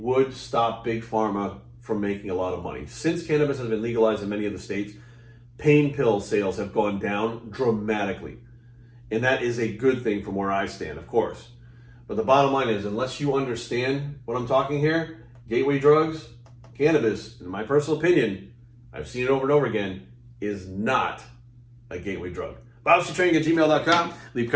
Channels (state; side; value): identical; both; correlation 1.00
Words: stop Big Pharma from making a lot of money. Since cannabis has been legalized in many of the states, pain pill sales have gone down dramatically. And that is a good thing from where I stand, of course. But the bottom line is, unless you understand what I'm talking here, gateway drugs, cannabis, in my personal opinion, I've seen it over and over again, is not a gateway drug. BobStraining@gmail.com. Leave